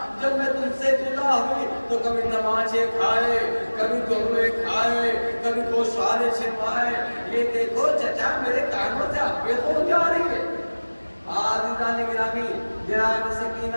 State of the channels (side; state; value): both; inverted; correlation -1.00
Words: جب میں تم سے جدا ہوئی تو کبھی نمازیں کھائے، کبھی دورے کھائے، کبھی گوشوارے چھپائے، یہ دیکھو چچا میرے کانوں سے ابے تو جا رہی ہے۔ عزیزان گرامی جناب